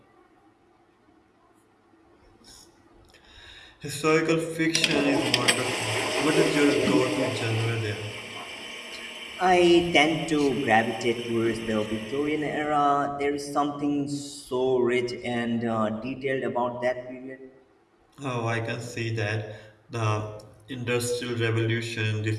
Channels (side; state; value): both; identical; correlation 1.00